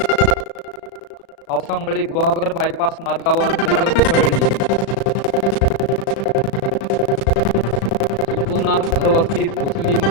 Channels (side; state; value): right; late; 36 ms